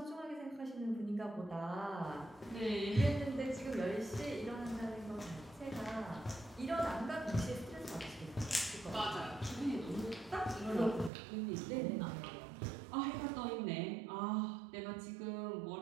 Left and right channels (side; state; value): left; drops out; at 11.1 s